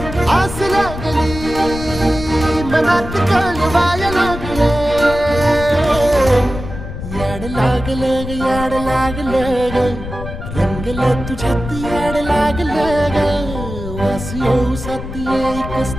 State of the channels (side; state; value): left; noise; rumble, 9 dB below the sound